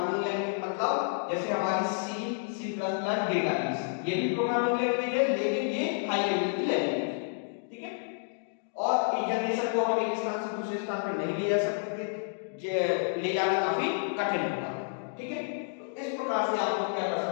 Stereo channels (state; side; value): silent; right; digital silence